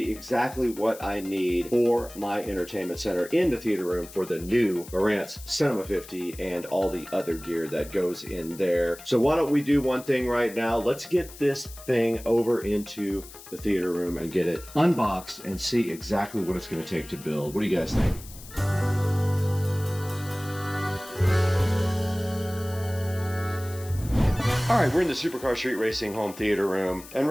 exactly what I need for my entertainment center in the theater room for the new Marantz Cinema 50 and all the other gear that goes in there. So why don't we do one thing right now? Let's get this thing over into the theater room and get it unboxed and see exactly what it's going to take to build. What do you guys think? All right, we're in the Supercar Street Racing home theater room, and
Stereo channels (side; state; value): left; noise; hiss, 17 dB below the sound